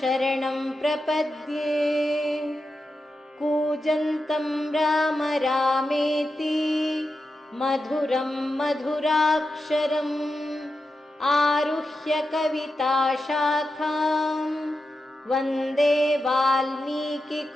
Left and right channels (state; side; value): normal; both; correlation 0.89